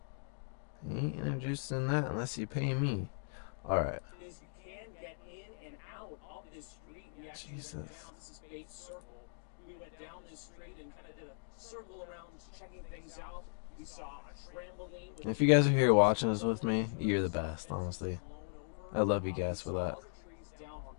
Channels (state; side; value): silent; right; digital silence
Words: Ain't introducing that unless you pay me. Alright. Jesus. We went down this street and kind of did a circle around checking things out. We saw a trampoline. If you guys are here watching this with me, you're the best, honestly. I love you guys for that.